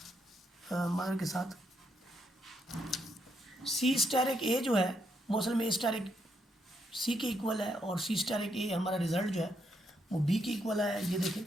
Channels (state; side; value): normal; both; correlation 0.76